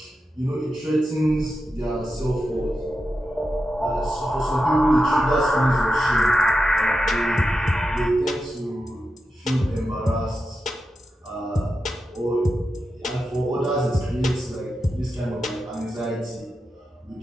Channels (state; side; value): normal; both; correlation 0.89